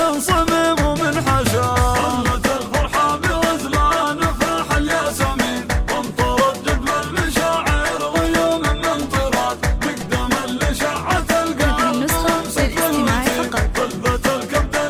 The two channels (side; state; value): both; identical; correlation 1.00